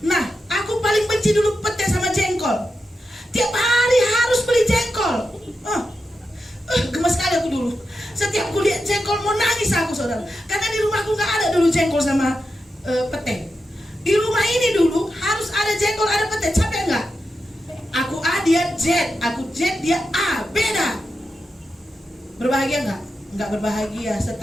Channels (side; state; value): both; normal; correlation 0.89